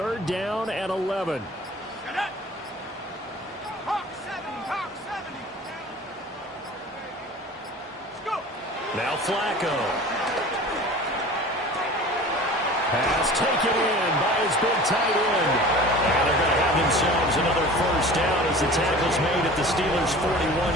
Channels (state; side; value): normal; both; correlation 0.40